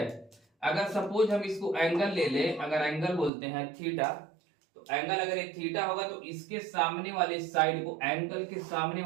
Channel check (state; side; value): drops out; left; at 3.3 s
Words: अगर सपोज हम इसको एंगल ले ले, अगर एंगल बोलते हैं थीटा, तो एंगल अगर ये थीटा होगा तो इसके सामने वाले साइड को, एंगल के सामने